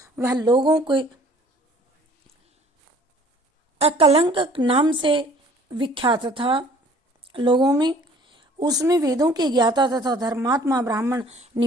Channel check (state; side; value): normal; both; correlation 0.54